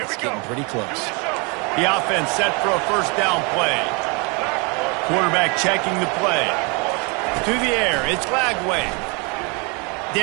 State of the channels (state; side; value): quieter; left; 31.2 dB